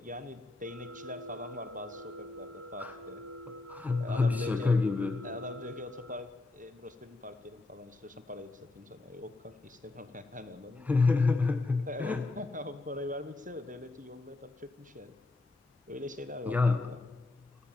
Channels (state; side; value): quieter; right; 3.3 dB